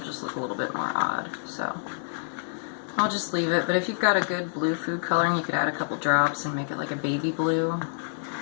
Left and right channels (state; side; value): silent; right; digital silence